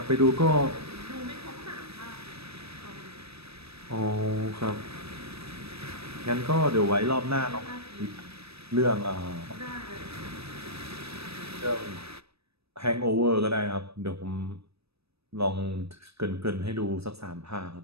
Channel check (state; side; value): late; left; 0.78 ms